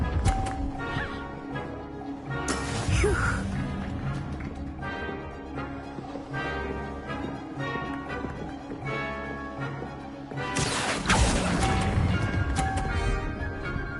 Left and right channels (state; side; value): identical; both; correlation 1.00